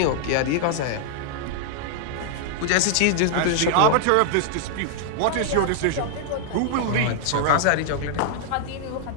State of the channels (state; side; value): different; both; correlation -0.01